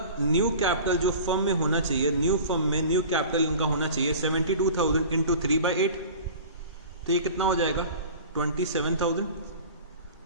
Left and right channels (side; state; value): both; inverted; correlation -0.39